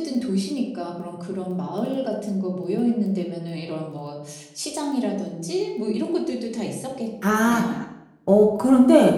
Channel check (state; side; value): identical; both; correlation 1.00